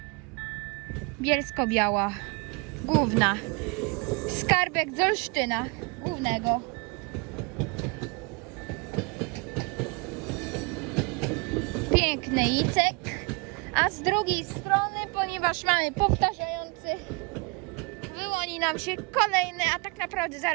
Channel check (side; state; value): left; quieter; 29.7 dB